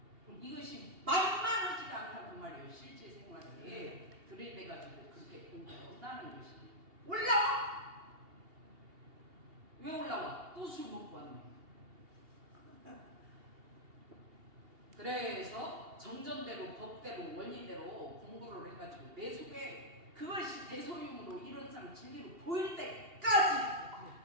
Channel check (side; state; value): left; late; 2.8 ms